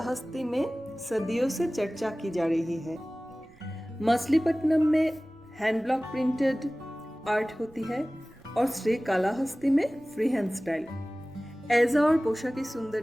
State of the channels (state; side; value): noise; right; rumble, 27 dB below the sound